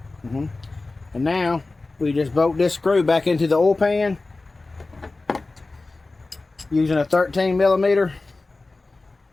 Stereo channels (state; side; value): quieter; right; 3.4 dB